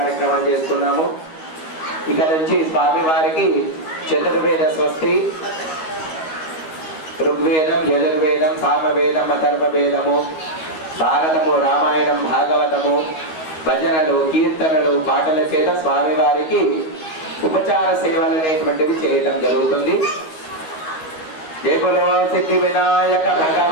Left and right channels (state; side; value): late; right; 13 ms